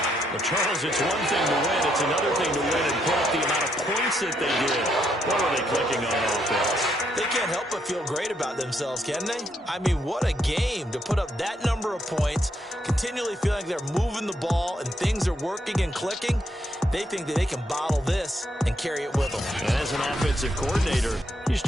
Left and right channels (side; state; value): both; normal; correlation 0.76